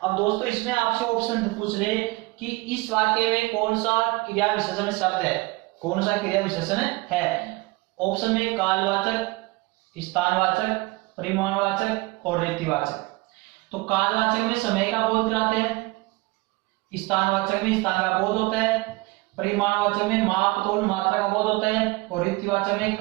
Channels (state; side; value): quieter; left; 22.9 dB